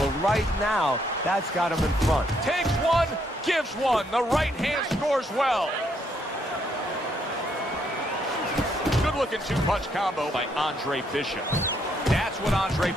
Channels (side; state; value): both; normal; correlation 0.73